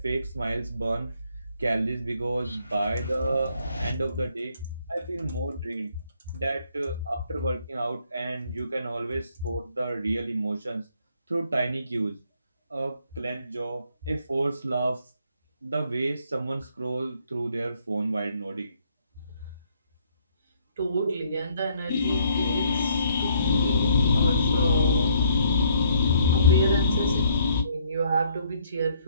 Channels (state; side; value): inverted; both; correlation -0.66